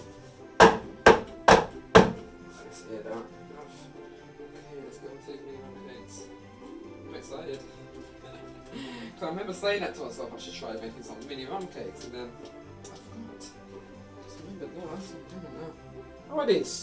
hear that. Okay, let's go and take mini rum cakes. I'm excited. Because I remember saying that to myself, I should try making some mini rum cakes, and then... I forgot. Just remembered, no, that's what I'm doing now. How are this?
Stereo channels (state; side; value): identical; both; correlation 1.00